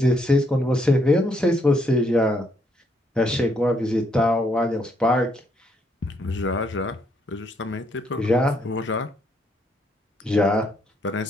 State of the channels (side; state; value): both; normal; correlation 0.73